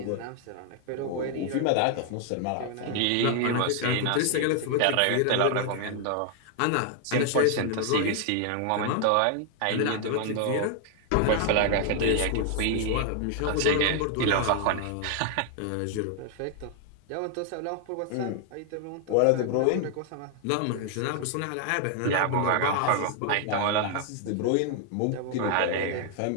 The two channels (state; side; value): different; both; correlation 0.00